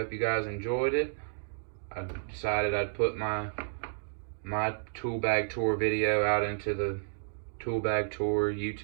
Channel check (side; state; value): left; silent; digital silence